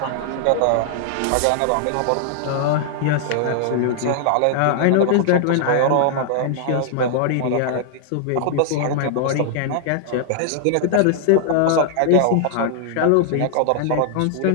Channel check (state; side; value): different; both; correlation -0.01